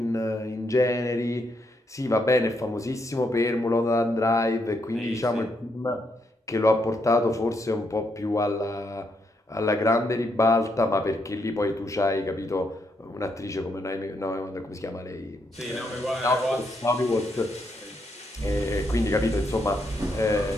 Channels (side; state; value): both; normal; correlation 0.77